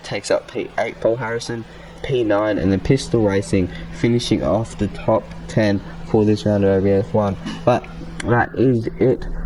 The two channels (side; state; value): both; identical; correlation 1.00